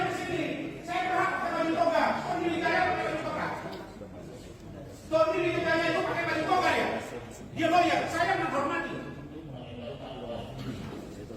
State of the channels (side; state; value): both; identical; correlation 1.00